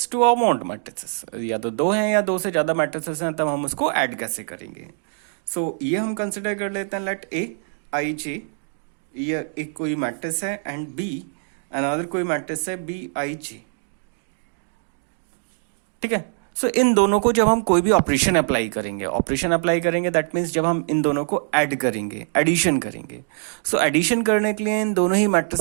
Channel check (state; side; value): silent; left; digital silence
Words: two amount matrices, या तो दो हैं या दो से ज्यादा मैट्रिसेस हैं, तब हम उसको ऐड कैसे करेंगे। सो ये हम कंसिडर कर लेते हैं लेट ए आई जे, ये एक कोई मैट्रिक्स है, एंड बी अनदर कोई मैट्रिक्स है बी आई जे। ठीक है। सो इन दोनों को जब हम कोई भी ऑपरेशन अप्लाई करेंगे दैट मीन्स जब हम इन दोनों को ऐड करेंगे, एडिशन करेंगे। सो एडिशन करने के लिए इन दोनों ही